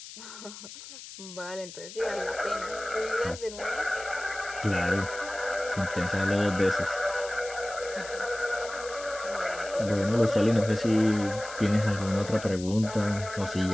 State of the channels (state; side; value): noise; left; hiss, 14 dB below the sound